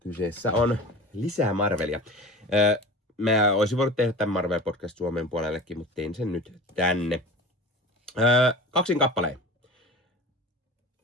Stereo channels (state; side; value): normal; both; correlation 0.35